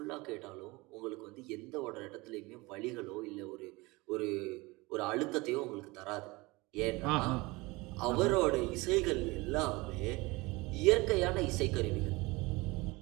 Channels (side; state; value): left; quieter; 23.2 dB